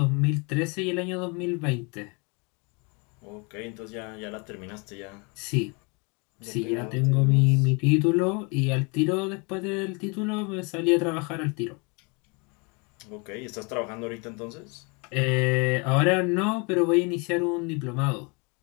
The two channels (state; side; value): quieter; right; 31.4 dB